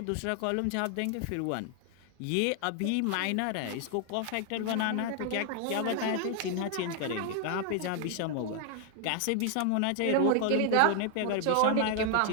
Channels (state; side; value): different; both; correlation 0.00